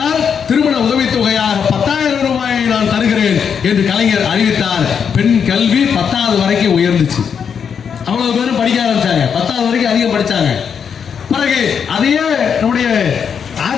திருமண உதவித்தொகையாக 10,000 ரூபாயை நான் தருகிறேன் என்று கலைஞர் அறிவித்தார். பெண் கல்வி 10வது வரைக்கும் உயர்ந்துச்சு. அவ்வளவு பேரும் படிக்க ஆரம்பிச்சாங்க. 10வது வரைக்கும் அதிகம் படிச்சாங்க. பிறகு அதையே நம்முடைய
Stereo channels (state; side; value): quieter; right; 7.1 dB